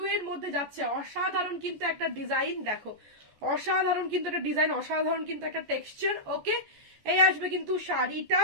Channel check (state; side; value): late; left; 14 ms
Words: এর মধ্যে যাচ্ছে, অসাধারণ কিন্তু একটা ডিজাইন। দেখো অসাধারণ কিন্তু একটা ডিজাইন, অসাধারণ কিন্তু একটা টেক্সচার। ওকে, এই আসবে কিন্তু শাড়িটা,